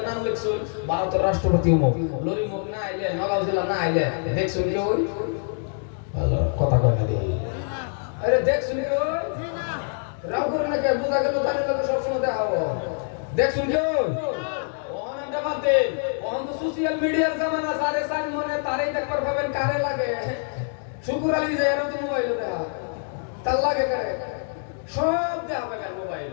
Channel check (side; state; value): right; silent; 60 dB below the other